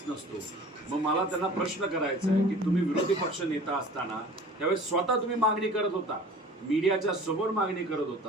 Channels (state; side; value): normal; both; correlation 0.44